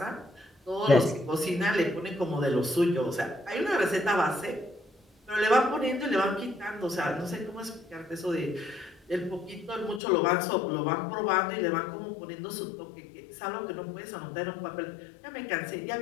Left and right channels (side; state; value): right; drops out; at 10.0 s